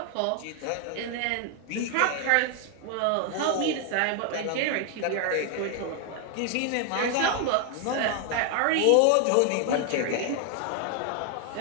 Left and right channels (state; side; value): different; both; correlation 0.00